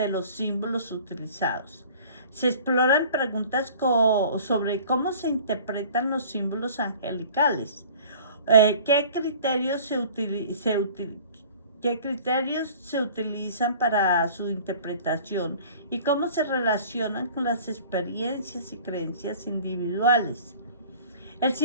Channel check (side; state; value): both; inverted; correlation -0.47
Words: los símbolos utilizados. Se exploran preguntas sobre cómo se interpretan los símbolos angelicales, qué criterios se utilizan para su interpretación y cómo se relacionan con las experiencias y creencias individuales. El